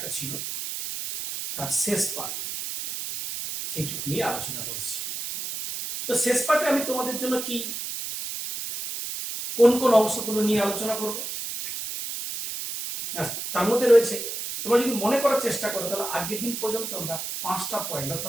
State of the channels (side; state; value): right; noise; hiss, 5 dB below the sound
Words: ছিল তার শেষ পার্ট সেইটুকু নিয়ে আলোচনা করছি। তো শেষ পার্টে আমি তোমাদের জন্য কি কোন কোন অংশগুলো নিয়ে আলোচনা করব তার মধ্যে রয়েছে, তোমরা যদি মনে করার চেষ্টা করো তাহলে আগের দিন পর্যন্ত আমরা 5টা পয়েন্ট